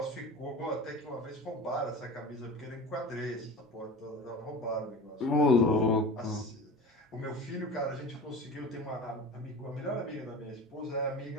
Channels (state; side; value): normal; both; correlation 0.34